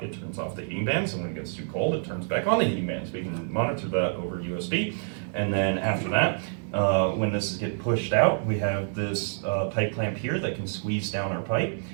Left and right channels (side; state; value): left; silent; digital silence